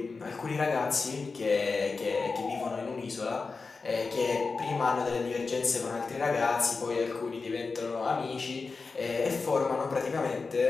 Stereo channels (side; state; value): right; quieter; 4.3 dB